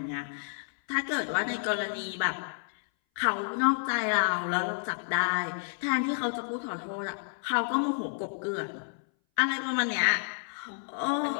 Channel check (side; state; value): right; silent; 58 dB below the other